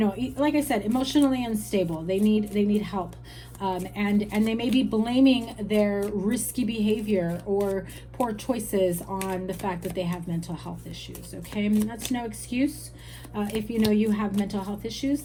like I said, emotionally unstable. They need help. And they may be blaming their risky behavior or poor choices on the fact that they have mental health issues. Okay, that's no excuse. If you know you have mental health issues,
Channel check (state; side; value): identical; both; correlation 1.00